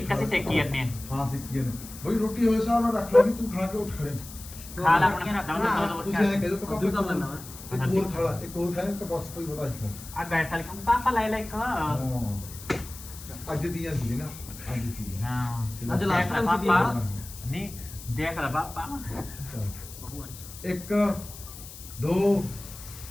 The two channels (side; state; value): left; noise; hiss, 15 dB below the sound